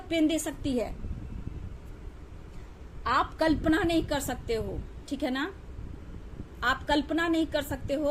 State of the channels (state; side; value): identical; both; correlation 1.00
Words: पेन दे सकती है। आप कल्पना नहीं कर सकते हो, ठीक है ना, आप कल्पना नहीं कर सकते हो